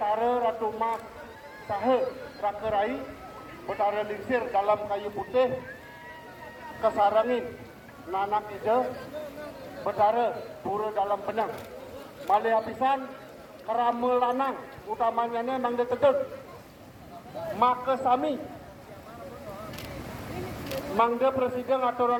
ratu mas sahe rakerai betara lingsir dalam kayu putih kesarangin nanak ide betara buru dalam benang Malih apisan kerama lanang utamanya ni mang detegeg maka sami mangga presiden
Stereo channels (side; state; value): both; identical; correlation 1.00